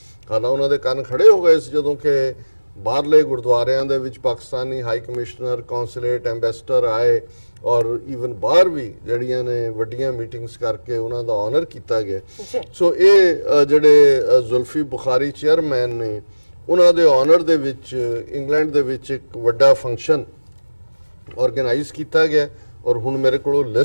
ਹਾਲਾਂ ਉਹਨਾਂ ਦੇ ਕੰਨ ਖੜੇ ਹੋ ਗਏ ਸੀ ਜਦੋਂ ਕਿ ਬਾਹਰਲੇ ਗੁਰਦੁਆਰਿਆਂ ਦੇ ਵਿੱਚ Pakistani high commissioner, consulate, ambassador ਆਏ, ਔਰ ਈਵਨ ਬਾਹਰ ਵੀ ਜਿਹੜੀਆਂ ਨੇ ਵੱਡੀਆਂ ਮੀਟਿੰਗਸ ਕਰਕੇ ਉਹਨਾਂ ਦਾ ਆਨਰ ਕੀਤਾ ਗਿਆ। ਸੋ ਇਹ ਜਿਹੜੇ ਜ਼ੁਲਫੀ ਬੁਖਾਰੀ ਚੇਅਰਮੈਨ ਨੇ, ਉਹਨਾਂ ਦੇ ਆਨਰ ਦੇ ਵਿੱਚ ਇੰਗਲੈਂਡ ਦੇ ਵਿੱਚ ਇੱਕ ਵੱਡਾ ਫੰਕਸ਼ਨ ਆਰਗੇਨਾਈਜ਼ ਕੀਤਾ ਗਿਆ, ਔਰ ਹੁਣ ਮੇਰੇ ਕੋਲ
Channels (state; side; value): inverted; both; correlation -1.00